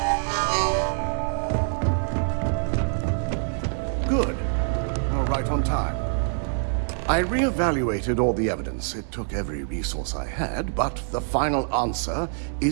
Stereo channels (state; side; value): silent; left; 62 dB below the other